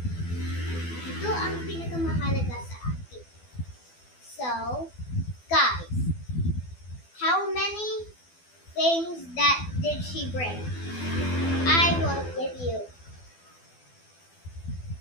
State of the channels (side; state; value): right; late; 12 ms